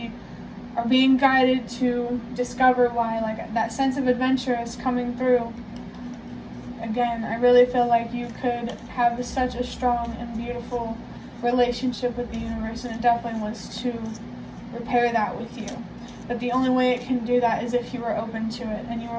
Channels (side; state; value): both; identical; correlation 1.00